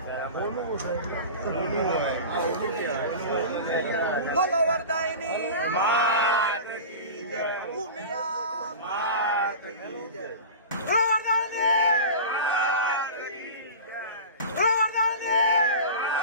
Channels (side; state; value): both; inverted; correlation -0.31